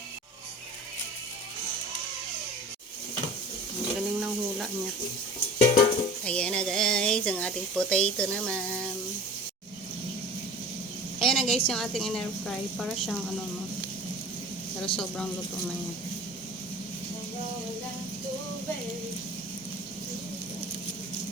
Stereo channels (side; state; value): both; normal; correlation 0.41